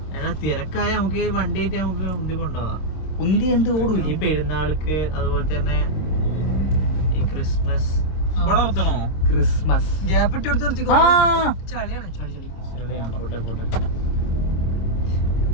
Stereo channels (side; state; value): right; late; 26 ms